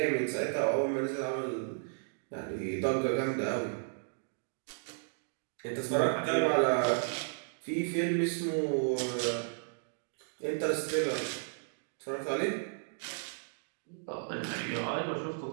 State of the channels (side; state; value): left; silent; digital silence